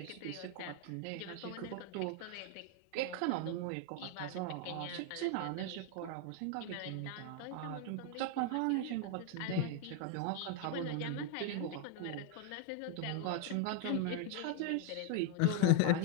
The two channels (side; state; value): both; different; correlation 0.01